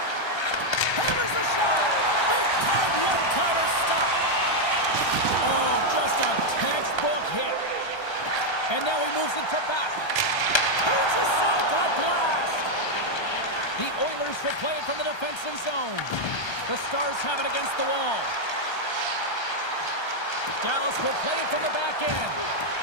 Hammers the shot. Big time one-timer stop. Oh, just a textbook hit. And now he moves it to back. Turns aside that blast. The Oilers will play it from the defensive zone. The Stars have it against the wall. Dallas will play it from the back end.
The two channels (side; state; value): right; late; 1.3 ms